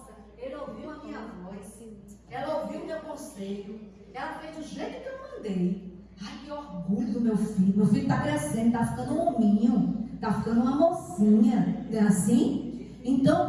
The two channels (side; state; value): both; identical; correlation 1.00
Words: ele ouviu a minha voz, ela ouviu o meu conselho, ela fez do jeito que eu mandei. Ai, que orgulho do meu filho está crescendo, está ficando um hominho, está ficando uma mocinha, não é assim?